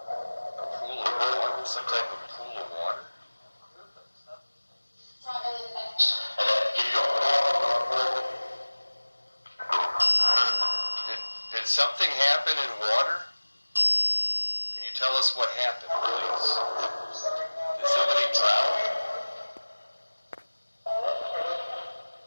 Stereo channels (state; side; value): inverted; both; correlation -1.00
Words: pool of water, some type of pool of water. Did something happen in water? Can you tell us what happened, please? Did somebody drown?